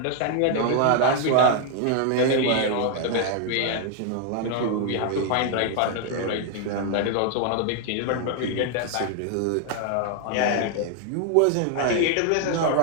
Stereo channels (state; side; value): different; both; correlation 0.00